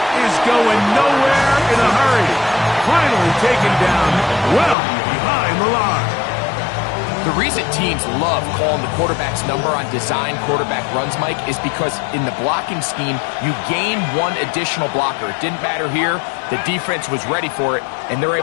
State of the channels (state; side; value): drops out; right; at 4.8 s